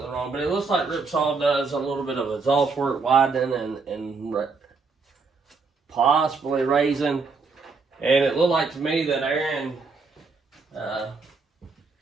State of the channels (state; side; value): quieter; left; 4.5 dB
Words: wrong, but it looks like RIPSAW does a little bit of exhaust work, widening and possibly raising. And it looked like to me that Aaron